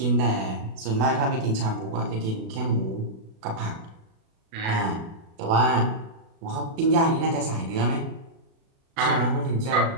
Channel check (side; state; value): left; late; 36 ms